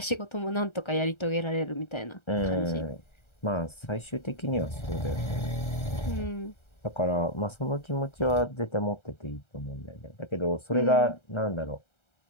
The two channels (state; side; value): late; right; 1.3 ms